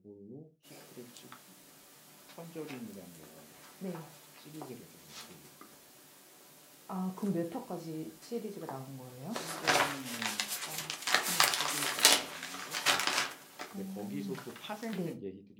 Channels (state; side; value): identical; both; correlation 1.00